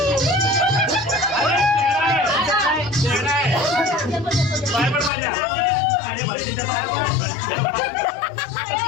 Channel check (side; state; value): right; drops out; at 5.1 s